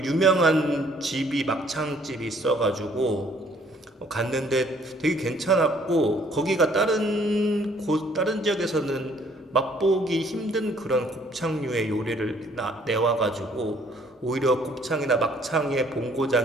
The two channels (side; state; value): both; normal; correlation 0.61